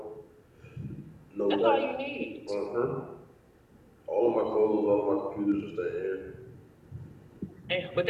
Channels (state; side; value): identical; both; correlation 1.00